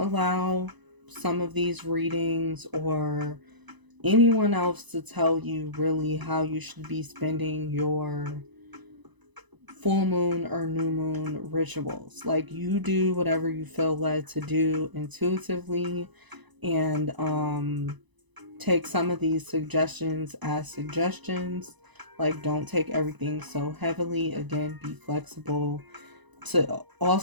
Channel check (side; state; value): left; late; 1.0 ms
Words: allow some of these readings or anyone else to tell you really how you should be spending your full moon or new moon rituals. Like, you do whatever you feel led to do intuitively, and take some of these suggestions as suggestions. Like, don't take everything so heavily. Again, be flexible to